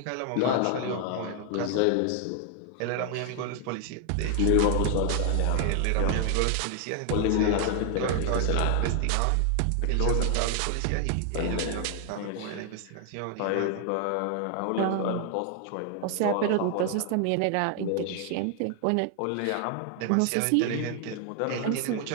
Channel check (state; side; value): different; both; correlation 0.00